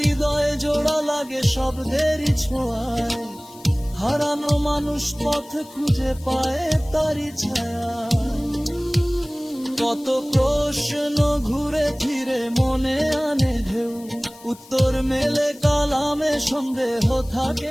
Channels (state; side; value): noise; left; hiss, 22 dB below the sound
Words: জোড়া লাগে শব্দেরই ছোঁয়ায়, হারানো মানুষ পথ খুঁজে পায় তারই ছায়া। কত প্রশ্ন ঘুরে ফিরে মনে আনে ঢেউ, উত্তর মেলে কালামে সন্দেহ